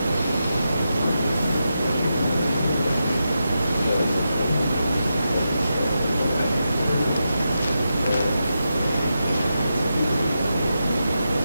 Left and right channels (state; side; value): inverted; both; correlation -0.88